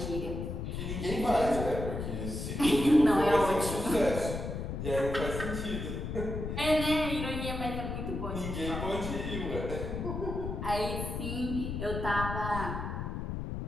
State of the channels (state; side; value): noise; left; rumble, 4 dB below the sound